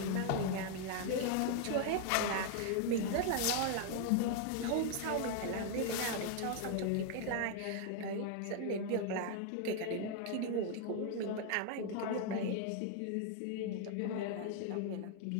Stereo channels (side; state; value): both; different; correlation 0.00